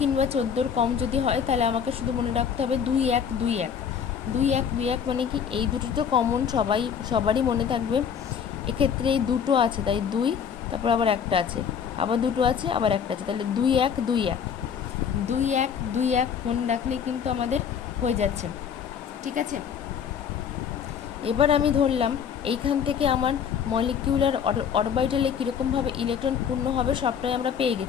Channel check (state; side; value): quieter; right; 7.6 dB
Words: কিংবা 14-র কম যদি হয় তাহলে আমাকে শুধু মনে রাখতে হবে 2 1 2 1 2 1 2 1 মানে কি এই দুটো তো কমন, সবারই মনে থাকবে। এক্ষেত্রে এই দুটো আছে তাই 2, তারপর আবার একটা আছে, আবার দুটো আছে, আবার একটা আছে, তাহলে 2 1 2 1 2 1 2 1 মনে রাখলেই কিন্তু আমাদের হয়ে যাচ্ছে। ঠিক আছে, এবার আমি ধরলাম এইখান থেকে আমার মলিকিউলার অরবিটালে কীরকমভাবে ইলেকট্রন পূর্ণ হবে সবটাই আমরা পেয়ে